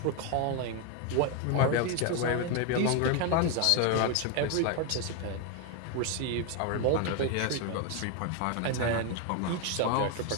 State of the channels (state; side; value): different; both; correlation 0.01